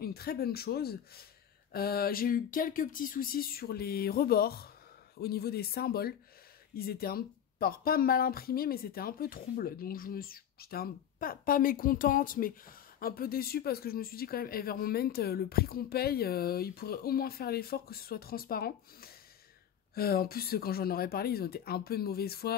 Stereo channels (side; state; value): right; quieter; 9.5 dB